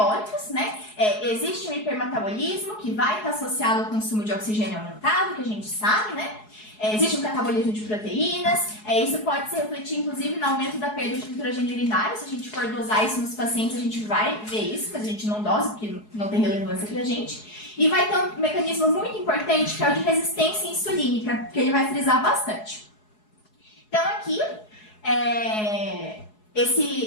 né? Existe um hipermetabolismo que vai estar associado ao consumo de oxigênio aumentado, que a gente sabe, né? Existe um catabolismo de proteínas, isso pode se refletir, inclusive, no aumento da perda de nitrogênio urinário. Se a gente for dosar isso nos pacientes, a gente vai ver isso, mas a gente não dosa, porque não tem relevância pra gente. E vai ter um mecanismo muito importante, que é o de resistência insulínica, que ele vai frisar bastante. Então, aqui,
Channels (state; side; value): late; right; 4.7 ms